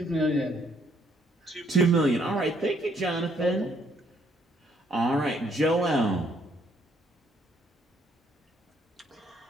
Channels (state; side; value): normal; both; correlation 0.68